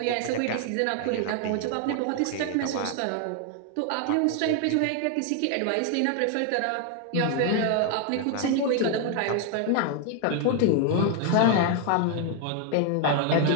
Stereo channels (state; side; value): different; both; correlation 0.00